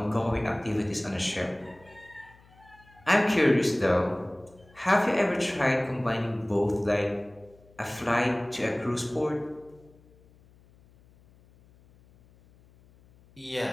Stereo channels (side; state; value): left; noise; hum, 28 dB below the sound